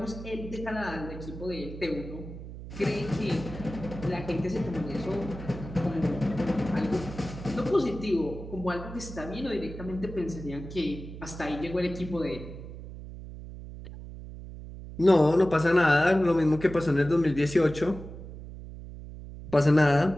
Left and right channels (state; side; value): noise; right; hum, 12 dB below the sound